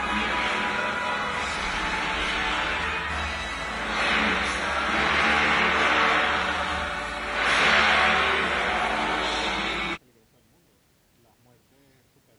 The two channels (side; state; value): both; identical; correlation 1.00